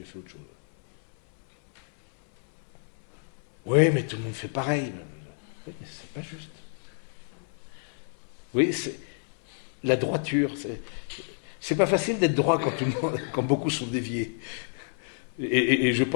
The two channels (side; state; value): right; silent; 59 dB below the other